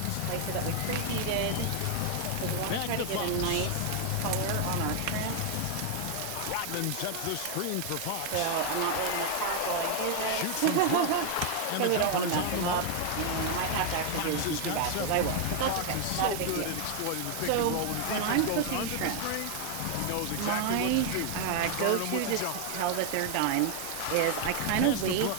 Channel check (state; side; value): different; both; correlation 0.00